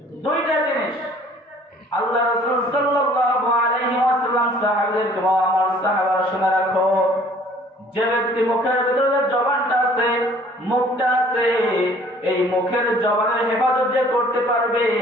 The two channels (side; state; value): both; normal; correlation 0.54